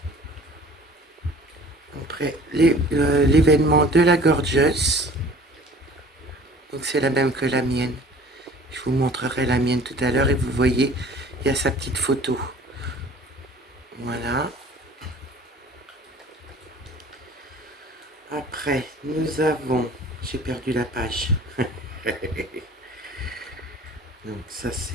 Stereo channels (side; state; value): both; normal; correlation 0.48